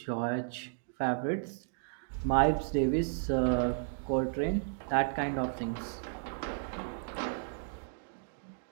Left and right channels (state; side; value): silent; left; digital silence